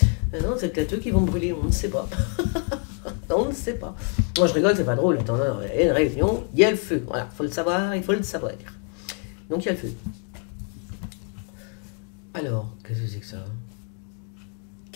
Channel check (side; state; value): right; quieter; 39.4 dB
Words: Non, c'est peut-être eux qui vont brûler, on ne sait pas. On ne sait pas. Moi, je rigole, c'est pas drôle. Attends, non, il y a une réunion, il y a le feu. Voilà, faut le savoir, il faut le savoir. Donc, il y a le feu. Alors, qu'est-ce que c'est que ça?